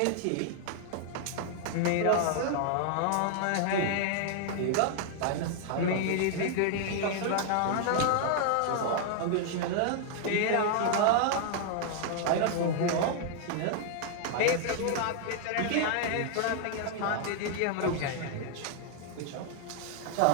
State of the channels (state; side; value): different; both; correlation 0.00